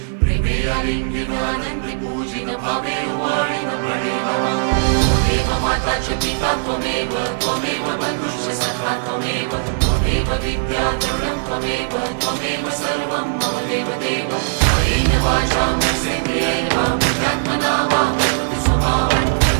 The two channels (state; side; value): silent; left; digital silence